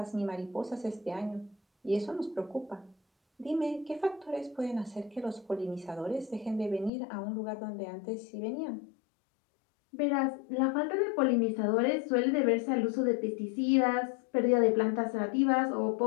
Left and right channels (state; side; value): drops out; right; at 6.9 s